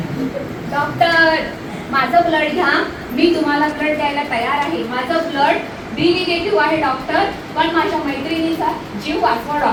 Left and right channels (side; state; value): both; identical; correlation 1.00